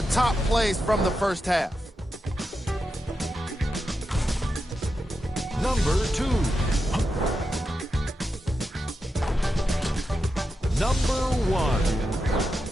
top plays from the first half. Number 2. Number 1.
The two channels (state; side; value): normal; both; correlation 0.88